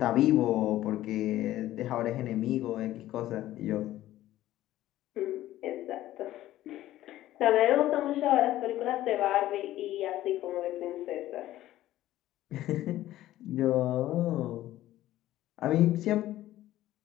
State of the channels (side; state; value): right; quieter; 14.5 dB